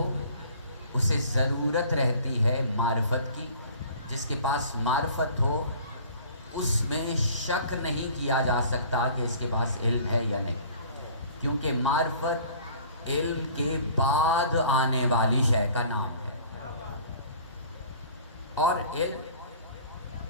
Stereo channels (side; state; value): both; inverted; correlation -0.49